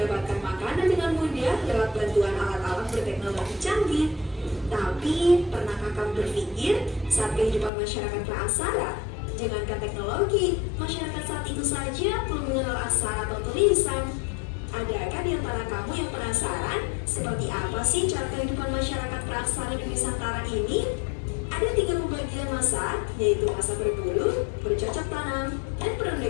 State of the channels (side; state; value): right; drops out; at 7.7 s